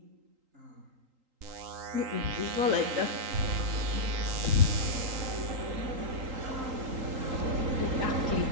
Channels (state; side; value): late; left; 3.8 ms